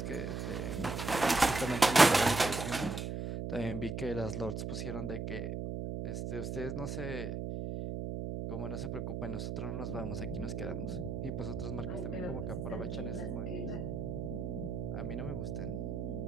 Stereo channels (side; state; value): right; noise; hum, 3 dB below the sound